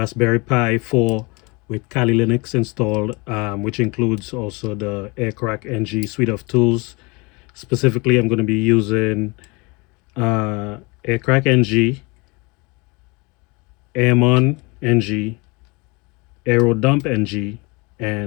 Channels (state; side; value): quieter; right; 27.5 dB